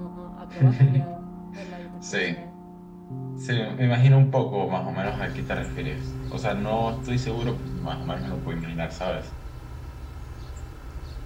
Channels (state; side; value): identical; both; correlation 1.00